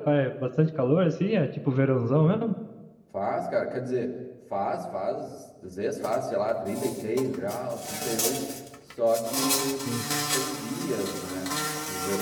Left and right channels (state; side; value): identical; both; correlation 1.00